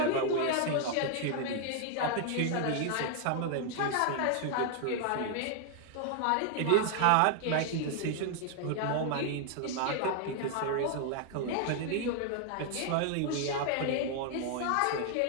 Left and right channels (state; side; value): different; both; correlation 0.00